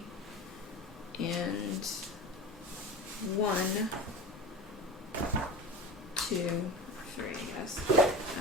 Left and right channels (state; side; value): normal; both; correlation 0.31